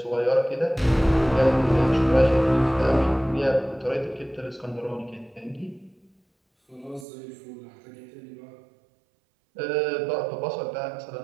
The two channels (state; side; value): drops out; left; at 7.1 s